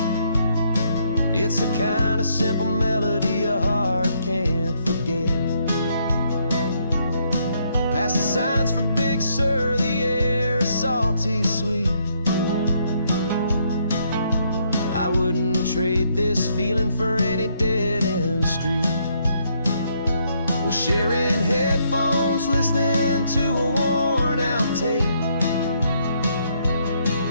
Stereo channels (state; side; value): inverted; both; correlation -0.72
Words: It's the kind of simple melody your heart can't forget. Past the signs for Big Sur, the air is salty sweet. I wouldn't trade this feeling for any dead-end street. We're sharing headphones, listening to a worn-out tape,